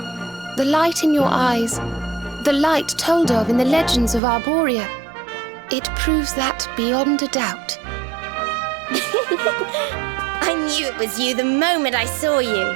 The light in your eyes, the light told of in the legends of Arborea, it proves that beyond a doubt. I knew it was you the moment I saw you.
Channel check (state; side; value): drops out; left; at 4.2 s